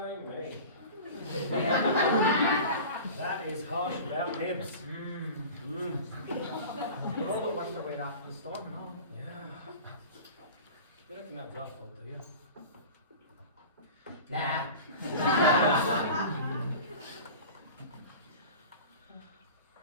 That is harsh about nibs. You're all the worst away after the storm and all. Yeah. You reckon that was our fault, do you? Nah.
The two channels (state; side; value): inverted; both; correlation -0.37